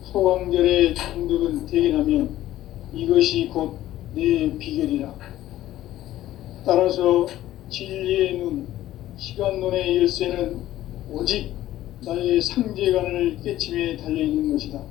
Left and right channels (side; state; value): right; quieter; 14.1 dB